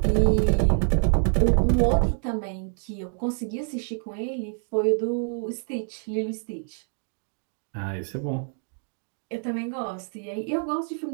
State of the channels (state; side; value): silent; left; 56 dB below the other